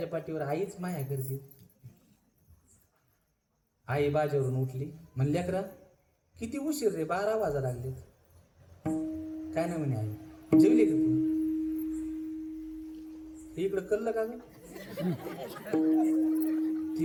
पाठीवर आईच माया करते. आई बाजेवरून उठली. म्हणली लेकरा किती उशीर रे, 12 वाजा लागले. काय नाही म्हणे आई. जेवली का तू? इकडं कल्ल का ग?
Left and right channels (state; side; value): identical; both; correlation 1.00